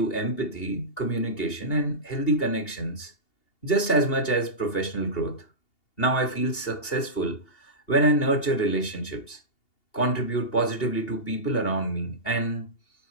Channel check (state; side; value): late; right; 2.8 ms